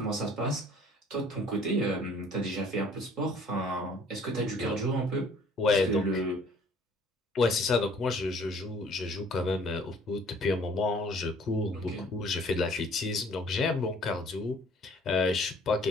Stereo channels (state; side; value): normal; both; correlation 0.55